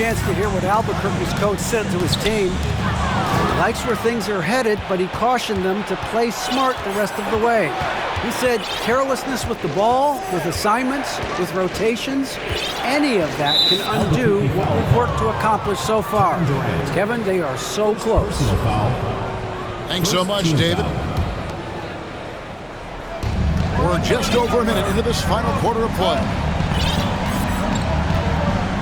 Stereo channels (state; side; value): identical; both; correlation 1.00